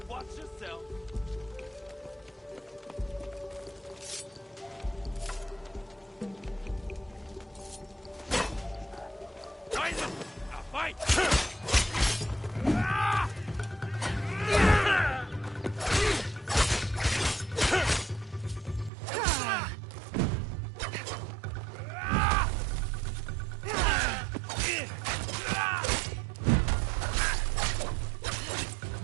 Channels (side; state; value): left; drops out; at 18.9 s